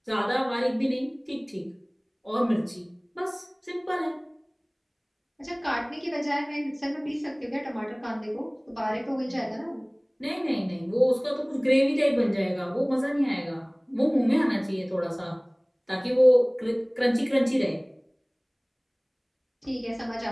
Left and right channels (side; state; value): both; identical; correlation 1.00